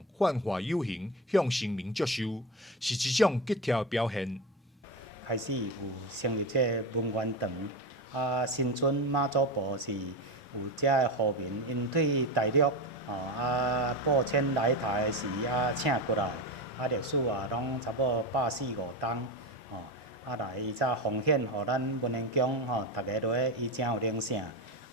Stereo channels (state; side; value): normal; both; correlation 0.19